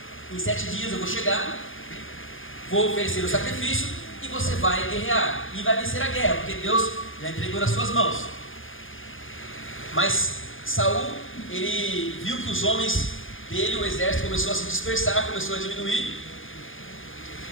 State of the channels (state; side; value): late; right; 0.59 ms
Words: em 7 dias eu vou chegar, vou oferecer o sacrifício e você vai guerrear e vai vencer a guerra, porque Deus já entregou nas suas mãos. Mas Saul, ele viu que os homens dele, o exército, começou a se dispersar, começou a diminuir,